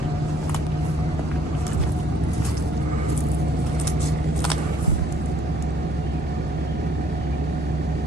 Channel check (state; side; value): normal; both; correlation 0.62